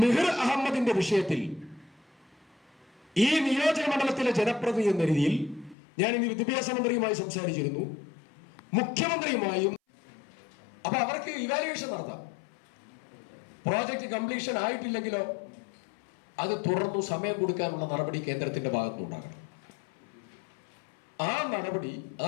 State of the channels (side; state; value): right; drops out; at 5.8 s